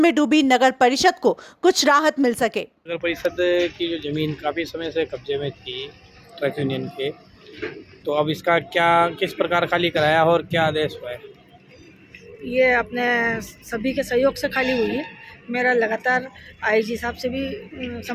डूबी नगर परिषद को कुछ राहत मिल सके। नगर परिषद की जो जमीन काफ़ी समय से कब्जे में थी ट्रक यूनियन के, तो अब इसका क्या किस प्रकार खाली कराया और क्या आदेश हुआ है? ये अपने सभी के सहयोग से खाली हुई है। मेरा लगातार आईजी साहब से भी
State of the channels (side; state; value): both; identical; correlation 1.00